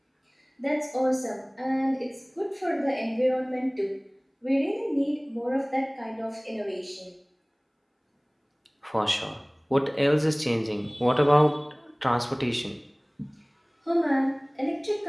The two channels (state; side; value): identical; both; correlation 1.00